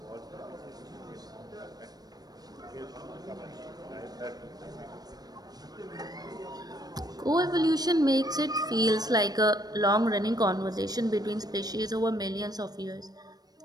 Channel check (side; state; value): left; late; 0.19 ms